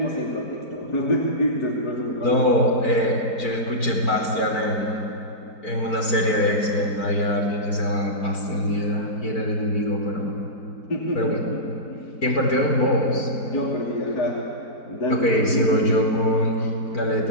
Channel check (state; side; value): late; right; 4.5 ms